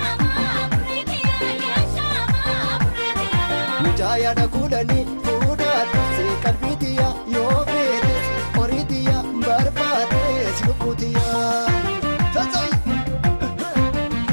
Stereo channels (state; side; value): inverted; both; correlation -1.00